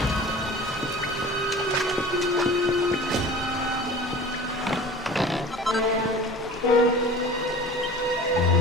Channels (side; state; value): both; normal; correlation 0.40